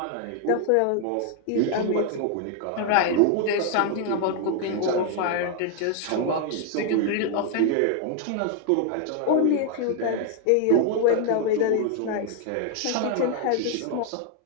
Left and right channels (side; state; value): both; different; correlation 0.00